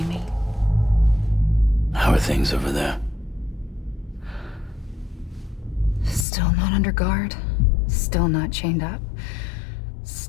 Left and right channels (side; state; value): right; drops out; at 6.2 s